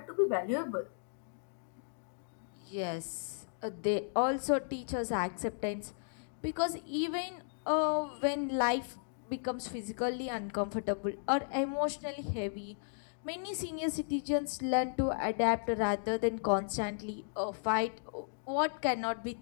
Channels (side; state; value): right; silent; digital silence